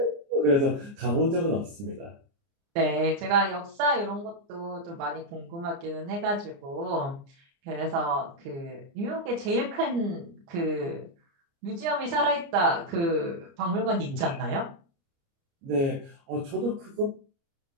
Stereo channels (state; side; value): late; left; 29 ms